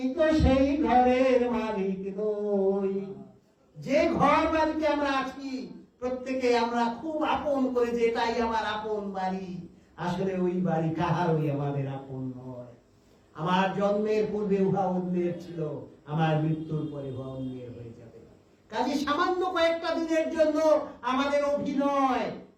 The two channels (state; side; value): identical; both; correlation 1.00